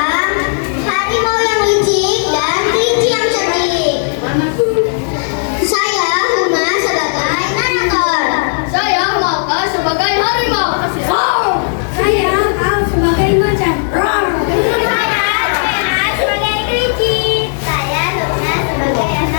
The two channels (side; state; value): right; silent; digital silence